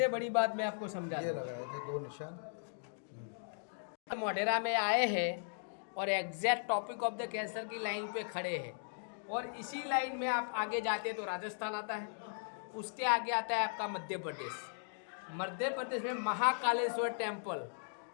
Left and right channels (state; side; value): silent; right; digital silence